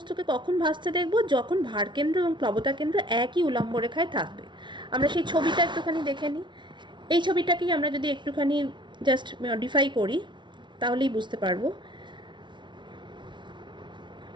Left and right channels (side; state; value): left; late; 0.23 ms